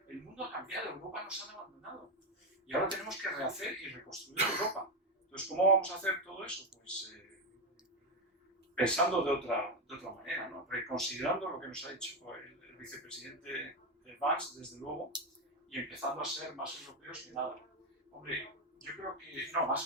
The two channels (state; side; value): normal; both; correlation 0.09